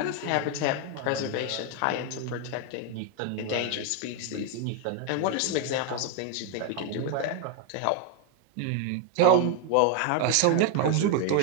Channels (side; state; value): both; different; correlation 0.01